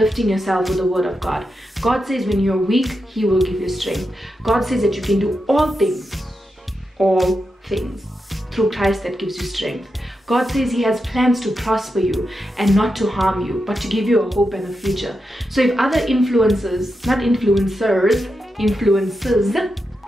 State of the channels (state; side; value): normal; both; correlation 0.87